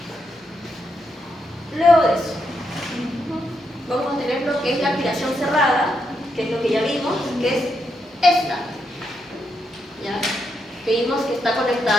aspiración cerrada, que es lo que ya vimos, que es esta. ¿Ya? Que vimos que está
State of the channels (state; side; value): normal; both; correlation 0.81